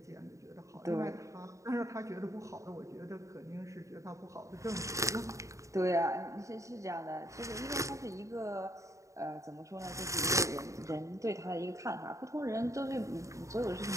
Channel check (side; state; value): left; late; 0.15 ms